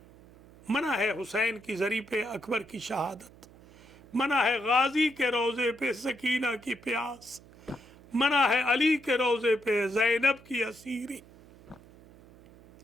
है हुसैन की ज़री पे अकबर की शहादत, मना है गाजी के रोज़े पे सकीना की प्यास, मना है अली के रोज़े पे ज़ैनब की असीरी।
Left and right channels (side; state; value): right; noise; hum, 23 dB below the sound